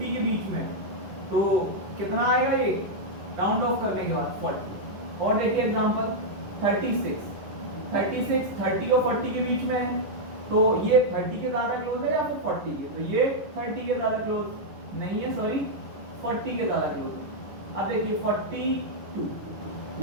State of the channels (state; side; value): late; left; 10 ms